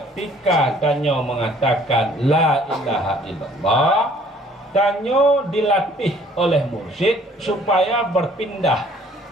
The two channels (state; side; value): normal; both; correlation 0.57